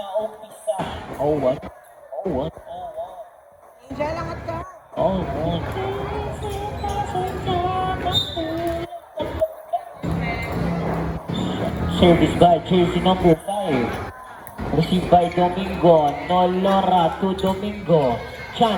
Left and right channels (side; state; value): both; identical; correlation 1.00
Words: umpisa. Oh, what? Oh, what? Angel, angat ka. Oh, what? Service by jersey number 5. Received by Domingo. Nolora to Domingo.